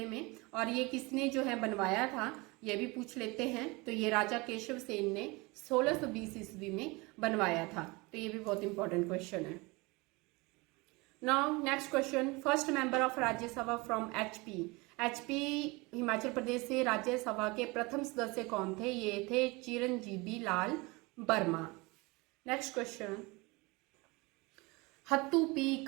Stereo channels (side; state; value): left; quieter; 25.1 dB